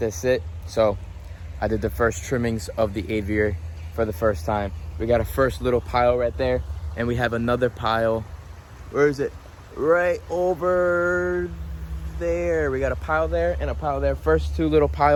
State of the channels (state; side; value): identical; both; correlation 1.00